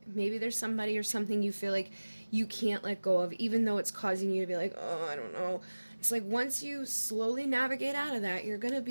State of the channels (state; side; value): inverted; both; correlation -1.00